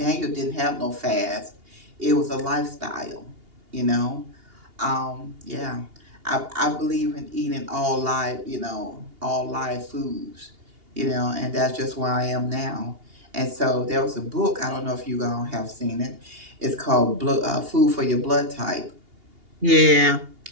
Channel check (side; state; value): left; late; 2.8 ms